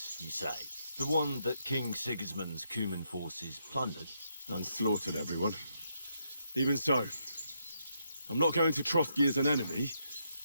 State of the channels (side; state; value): both; inverted; correlation -0.78